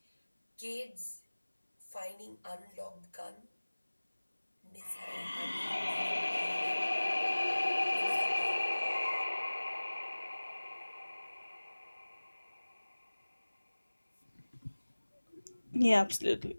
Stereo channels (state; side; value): inverted; both; correlation -1.00